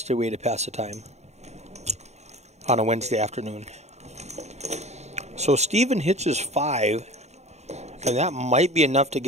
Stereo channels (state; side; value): late; left; 0.32 ms